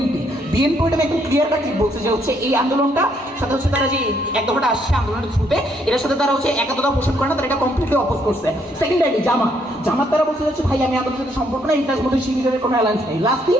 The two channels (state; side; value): normal; both; correlation 0.71